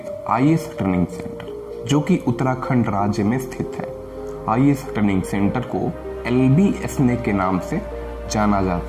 आईएएस ट्रेनिंग सेंटर, जो कि उत्तराखंड राज्य में स्थित है। आईएएस ट्रेनिंग सेंटर को LBSNA के नाम से जाना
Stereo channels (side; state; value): both; identical; correlation 1.00